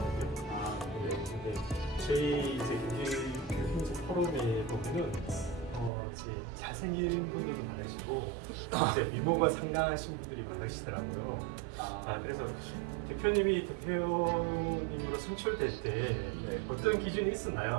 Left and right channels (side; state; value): left; drops out; at 5.9 s